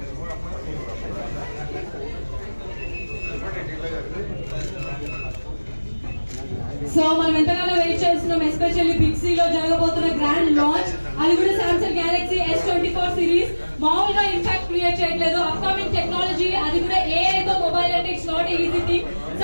So మనం ఎంతగానో వెయిట్ చేస్తున్నాం, especially big C లో జరగబోతున్న grand launch. అది కూడా Samsung Galaxy S24 series. మామూలుగా impact create చేయట్లేదు, upcoming technology, అది కూడా AI తో మొబైల్ అంటే it's not easy thing.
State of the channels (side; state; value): both; inverted; correlation -1.00